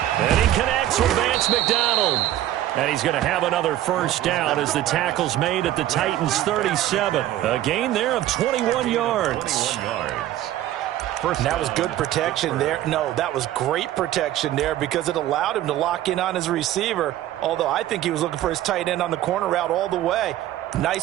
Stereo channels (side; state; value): left; quieter; 13.4 dB